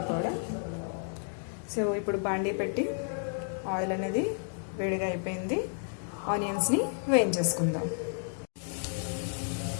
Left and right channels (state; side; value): silent; right; digital silence